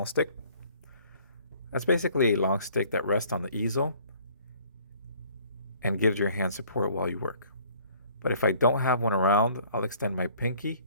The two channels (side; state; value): both; inverted; correlation -0.57